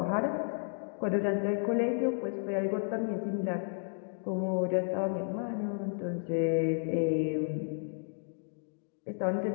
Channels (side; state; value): right; silent; digital silence